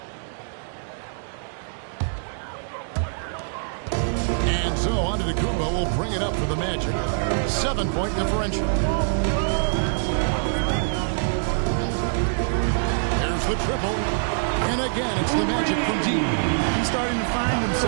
And so Antetokounmpo will bring it up for the Magic. 7-point differential. There's the triple. And again, it's the Magic from deep. He's starting to find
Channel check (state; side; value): silent; left; digital silence